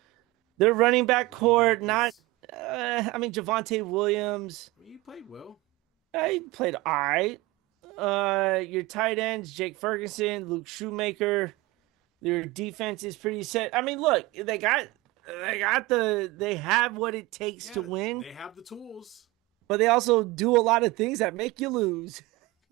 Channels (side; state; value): left; quieter; 20.4 dB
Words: Their running back core, Javonte Williams. I mean, he played well. He played all right. Your tight ends, Jake Ferguson, Luke Shoemaker. Their defense is pretty set. I mean, look, they have what it takes to win. They have the tools. But they also do a lot of things that make you lose.